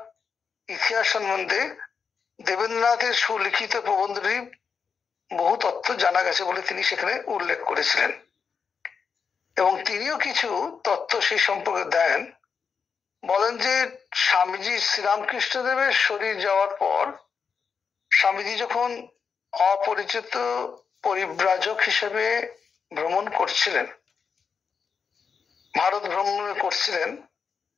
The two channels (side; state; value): right; quieter; 6.0 dB